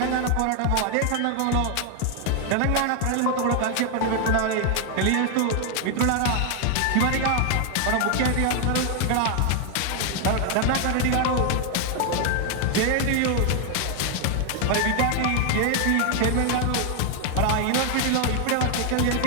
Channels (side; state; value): both; different; correlation 0.00